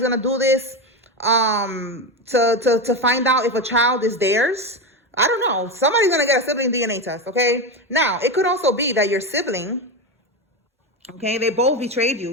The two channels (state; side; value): normal; both; correlation 0.17